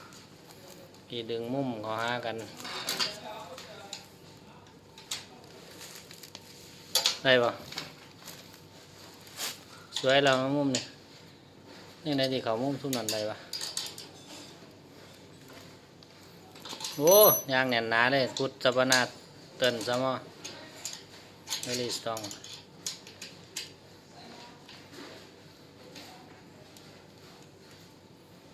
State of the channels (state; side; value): identical; both; correlation 1.00